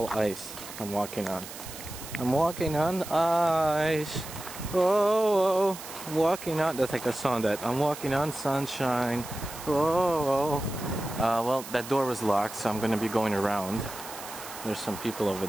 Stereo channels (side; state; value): right; noise; hiss, 12 dB below the sound